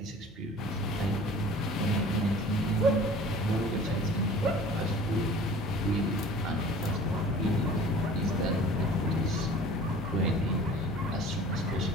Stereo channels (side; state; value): both; normal; correlation 0.45